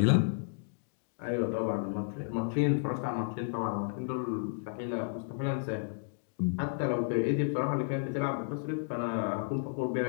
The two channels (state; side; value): silent; right; digital silence